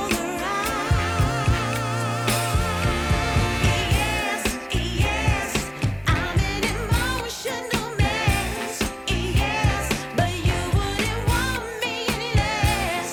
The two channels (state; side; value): identical; both; correlation 1.00